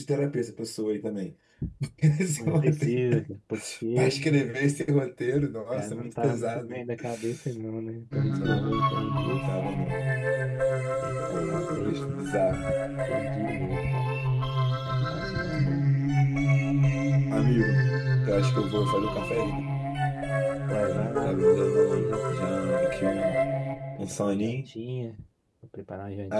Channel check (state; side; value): identical; both; correlation 1.00